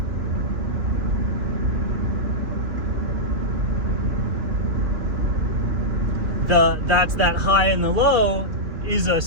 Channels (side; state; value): left; late; 3.0 ms